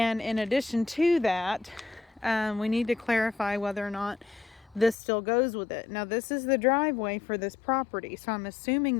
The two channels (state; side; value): drops out; right; at 5.0 s